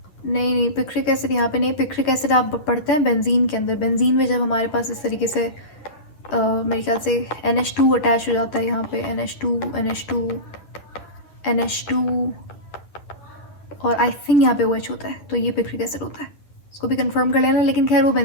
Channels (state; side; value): late; right; 10 ms